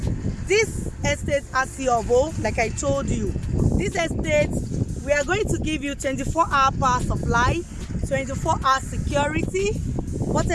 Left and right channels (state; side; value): identical; both; correlation 1.00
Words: This estate Ogombo, like I told you, this estate, we are going to give you 24-hour power supply, 24-hour security,